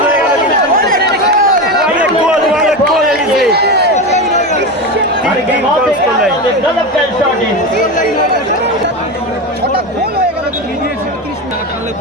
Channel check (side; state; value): both; normal; correlation 0.19